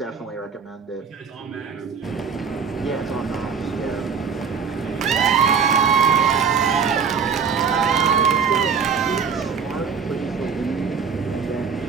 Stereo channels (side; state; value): left; quieter; 6.2 dB